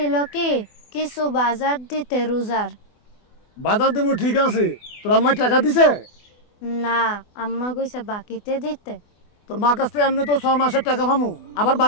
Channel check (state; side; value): late; right; 24 ms